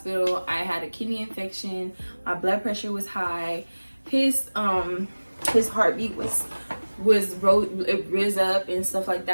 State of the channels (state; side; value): inverted; both; correlation -1.00